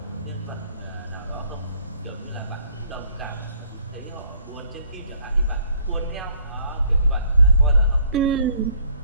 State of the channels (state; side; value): inverted; both; correlation -0.62